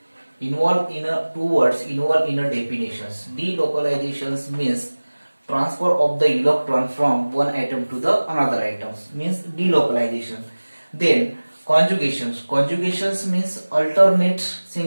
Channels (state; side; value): inverted; both; correlation -1.00